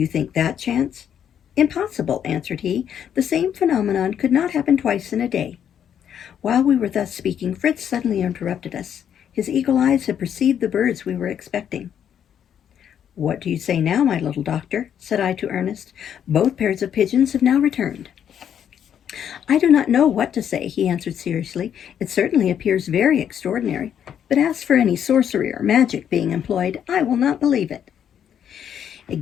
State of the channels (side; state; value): right; quieter; 9.0 dB